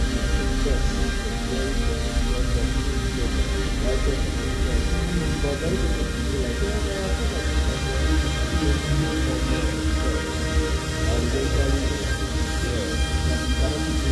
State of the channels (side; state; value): both; identical; correlation 1.00